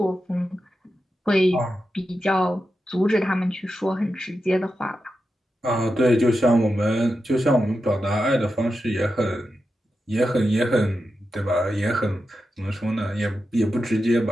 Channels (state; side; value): normal; both; correlation 0.89